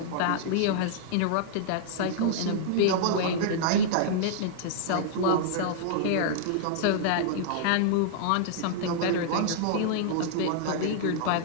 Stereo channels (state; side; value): different; both; correlation -0.02